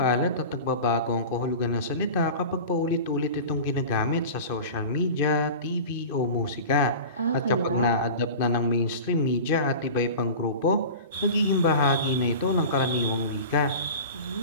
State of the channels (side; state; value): both; inverted; correlation -0.34